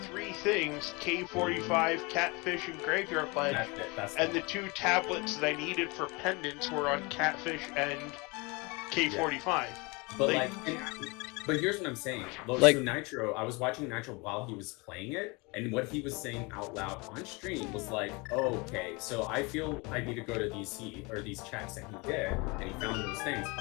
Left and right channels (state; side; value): quieter; right; 27.3 dB